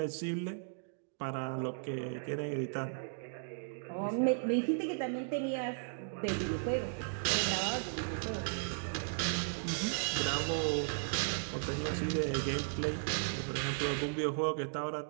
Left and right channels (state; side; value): silent; left; digital silence